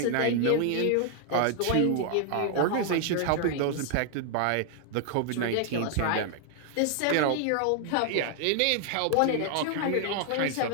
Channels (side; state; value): both; different; correlation 0.00